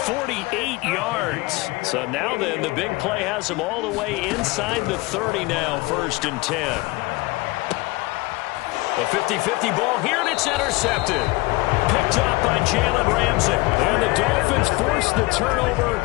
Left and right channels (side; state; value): right; quieter; 22.1 dB